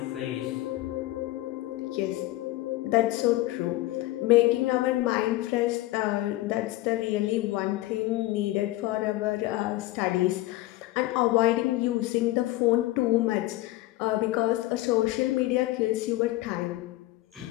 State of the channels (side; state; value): right; quieter; 17.7 dB